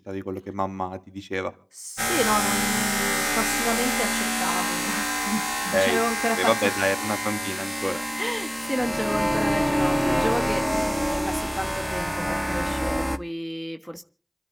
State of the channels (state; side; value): identical; both; correlation 1.00